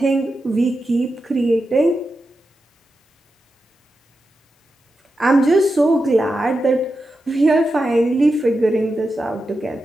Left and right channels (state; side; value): normal; both; correlation 0.89